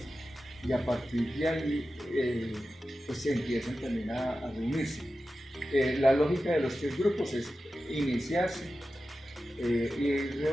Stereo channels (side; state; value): both; normal; correlation 0.93